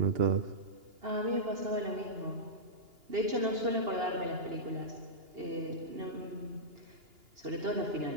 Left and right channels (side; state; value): left; late; 2.8 ms